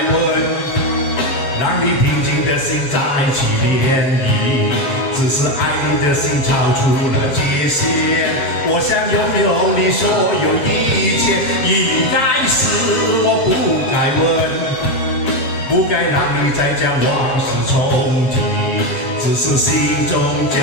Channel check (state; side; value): late; right; 7.2 ms